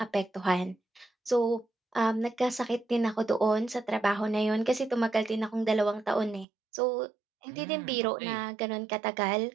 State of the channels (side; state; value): left; drops out; at 6.5 s